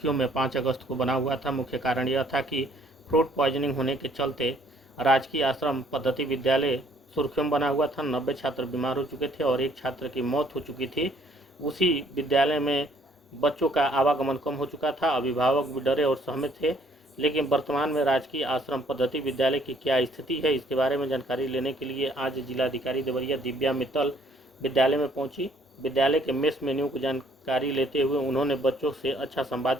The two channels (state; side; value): normal; both; correlation 0.63